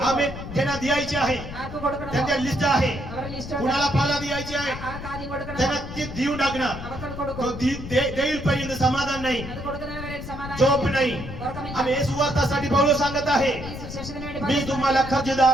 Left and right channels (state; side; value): noise; left; rumble, 10 dB below the sound